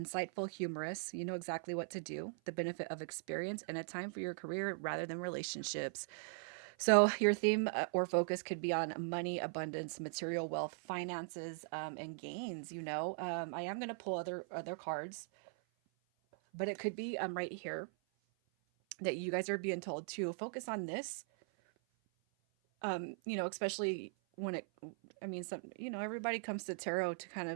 humorous. You know exactly what to do. The benefit of experience and a time for your career rather than relationships. So your theme or focus could be on money, abundance, material wealth, finances, and gains. I am going to pull other cards, but it could be right here that you guys are being told to focus on this. Especially when I mean, everybody comes to tarot to kind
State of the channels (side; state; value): left; silent; 51 dB below the other